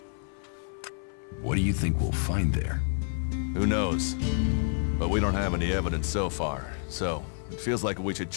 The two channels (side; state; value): right; silent; 59 dB below the other